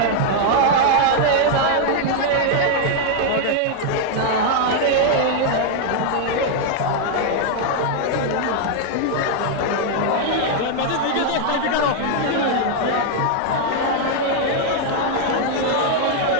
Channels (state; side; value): different; both; correlation 0.00